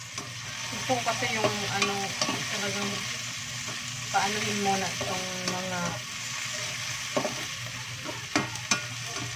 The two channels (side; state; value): both; identical; correlation 1.00